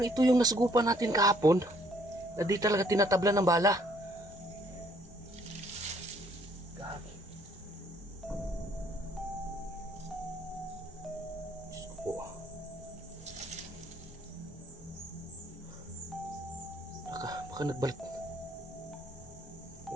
ito yung nasugupan natin kahapon na di talaga tinatabla ng bala. Gagi. Diyos ko po. Baka nagbalat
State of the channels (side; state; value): both; normal; correlation 0.64